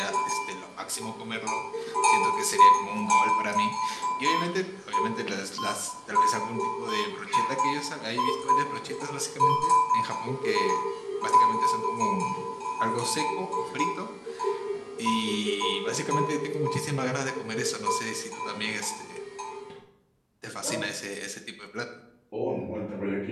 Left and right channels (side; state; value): both; identical; correlation 1.00